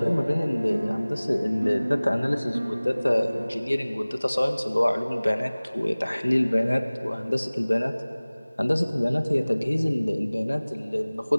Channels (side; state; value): both; inverted; correlation -0.99